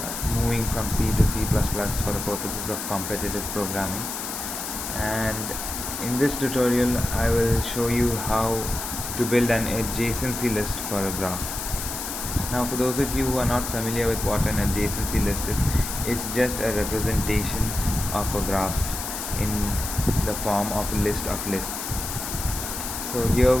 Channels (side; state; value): left; noise; hiss, 6 dB below the sound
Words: moving from C to C++ for the purposes of competitive programming. And in this tutorial I will show you how to build an adjacency list for a graph. Now for those of you who are not familiar with what an adjacency list is, it's just a representation of a graph in the form of a list of lists. So here